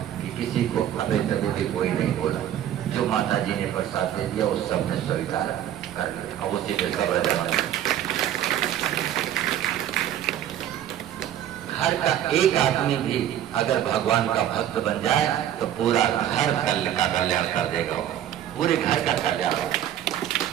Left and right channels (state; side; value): quieter; left; 11.2 dB